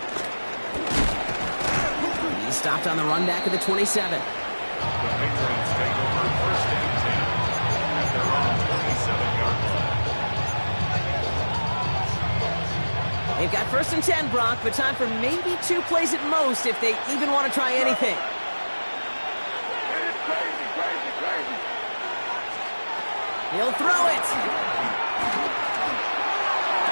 He stopped on the run back at the 27. The Patriots take over 1st and 10 at their own 27-yard line. They've got 1st and 10, Brock, but time for maybe 2 plays at most if they even want to try anything. He'll throw it.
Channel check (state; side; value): inverted; both; correlation -1.00